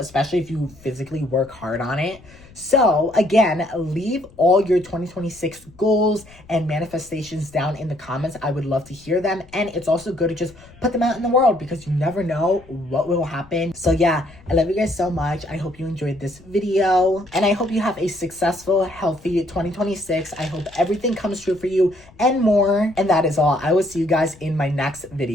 if you physically work hard on it. So again, leave all your 2026 goals and manifestations down in the comments. I would love to hear them. And it's also good to just put them out in the world, because you never know what will happen. So yeah, I love you guys so much. I hope you enjoyed this video, and I hope you have a successful, healthy 2026. I hope everything comes true for you and more. And that is all. I will see you guys in my next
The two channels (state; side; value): noise; left; rumble, 24 dB below the sound